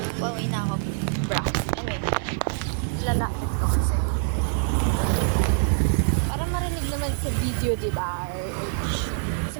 Pauwi na ako, bro. Anyway, lalapit ko kasi para marinig naman sa video, diba?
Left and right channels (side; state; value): left; silent; 56 dB below the other